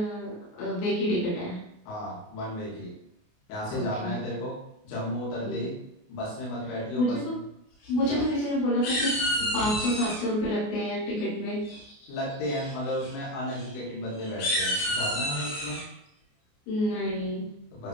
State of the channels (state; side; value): late; right; 28 ms